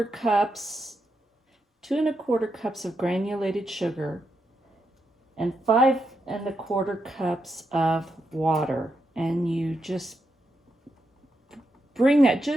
cups of granulated sugar and 5¼ cups of water, and you just bring that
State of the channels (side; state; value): both; normal; correlation 0.84